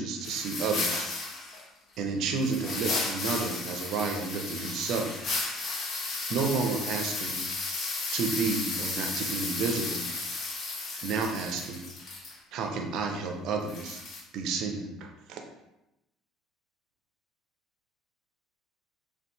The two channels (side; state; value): both; normal; correlation 0.50